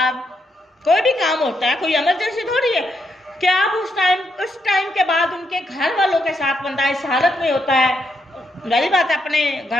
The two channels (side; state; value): both; normal; correlation 0.79